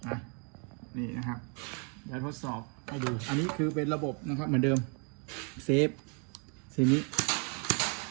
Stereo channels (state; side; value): quieter; left; 37.7 dB